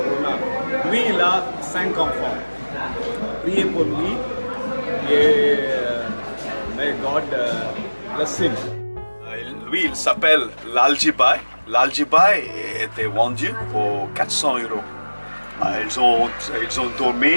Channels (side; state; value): both; inverted; correlation -1.00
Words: Lui, il a 5 enfants. Priez pour lui et may God bless him. Lui, il s'appelle l'Aljibai. L'Aljibai était vendu pour 400 €. Ils ont